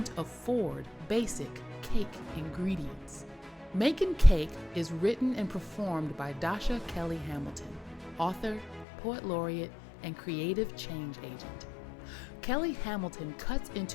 afford basic cake ingredients. Makin Cake is written and performed by Dasha Kelly Hamilton, author, poet laureate, and creative change agent. Kelly Hamilton cuts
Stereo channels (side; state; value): right; drops out; at 8.8 s